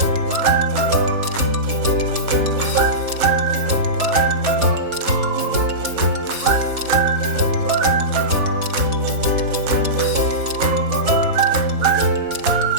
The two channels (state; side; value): late; left; 4.1 ms